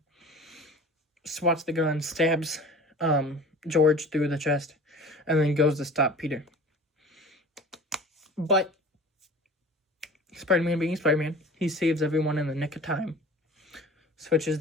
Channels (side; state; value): both; normal; correlation 0.42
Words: Swats the gun, stabs George through the chest, and then goes to stop Peter. But Spider-Man being Spider-Man, he saves everyone in the nick of time. Switches